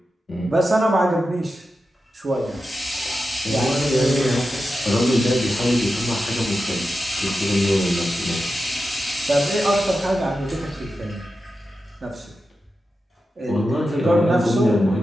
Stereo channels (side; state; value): both; normal; correlation 0.91